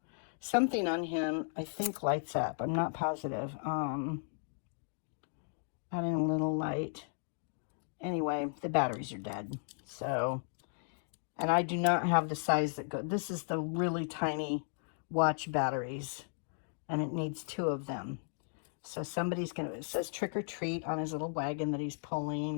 Something on him, I think, lights up. I'm not positive. Adding a little light. Anyway, the batteries are dead. So, and I do not have the size that go. This is the really tiny watch batteries, and it needs 2 of them. So somebody's gonna, it says trick or treat on his little wagon that he's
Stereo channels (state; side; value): silent; right; digital silence